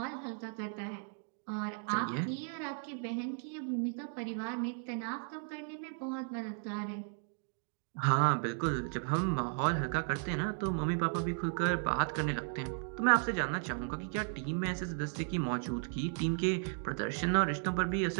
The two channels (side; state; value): left; silent; 54 dB below the other